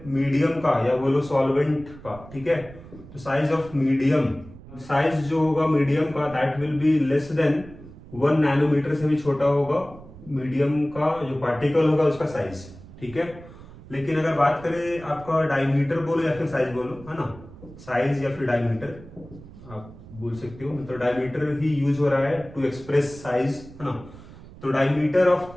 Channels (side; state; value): right; noise; rumble, 18 dB below the sound